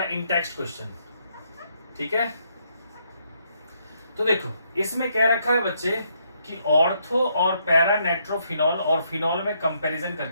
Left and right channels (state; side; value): inverted; both; correlation -0.74